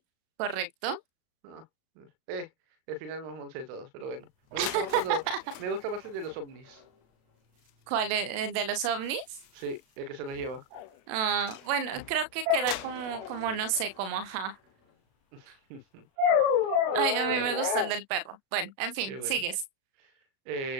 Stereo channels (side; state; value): left; late; 36 ms